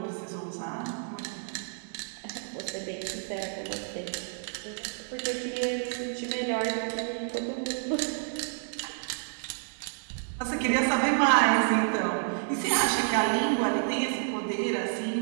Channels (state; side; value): silent; left; 58 dB below the other